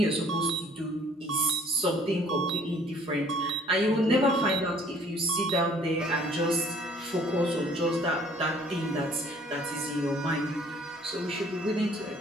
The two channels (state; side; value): normal; both; correlation 0.58